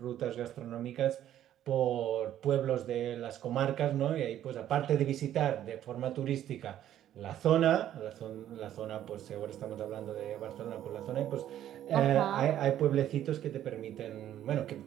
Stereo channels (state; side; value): quieter; left; 11.6 dB